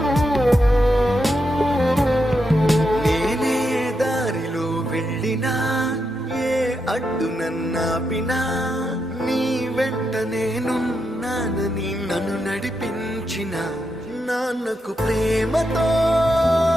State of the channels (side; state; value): both; normal; correlation 0.84